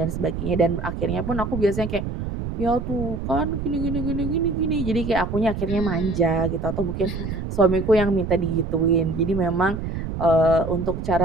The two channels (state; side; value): noise; right; rumble, 5 dB below the sound